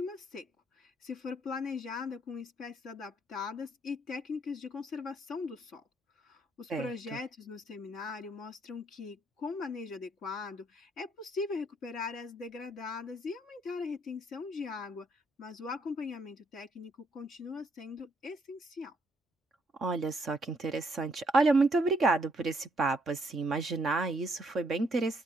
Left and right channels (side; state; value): both; normal; correlation 0.71